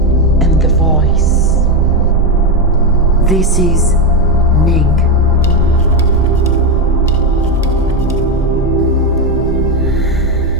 and the voice. This is Ning.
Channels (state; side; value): normal; both; correlation 0.10